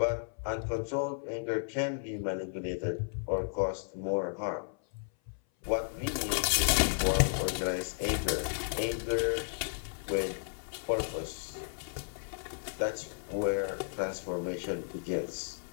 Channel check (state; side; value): silent; right; 55 dB below the other